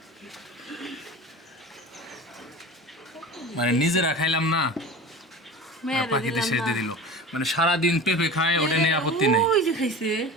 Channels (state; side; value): normal; both; correlation 0.34